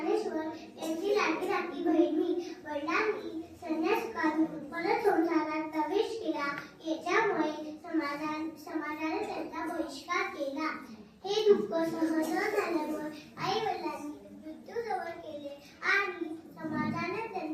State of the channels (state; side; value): identical; both; correlation 1.00